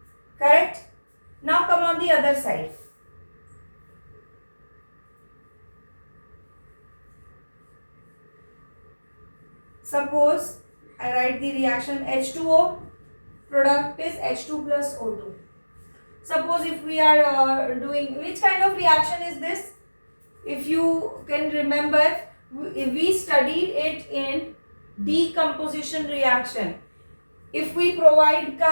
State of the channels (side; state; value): both; inverted; correlation -1.00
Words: Correct? Now come on the other side. Suppose I write the reaction H2O, product is H2 plus O2. Suppose if we are doing, which kind of reaction is this? If you can remember, we studied it in decomposition reaction. If we provide